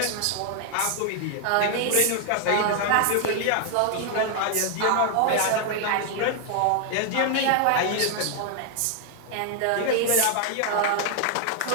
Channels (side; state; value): both; different; correlation 0.00